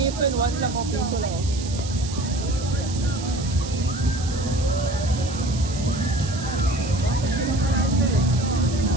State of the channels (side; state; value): right; noise; hiss, 12 dB below the sound